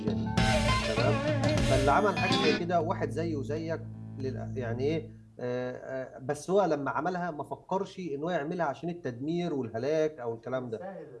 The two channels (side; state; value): both; identical; correlation 1.00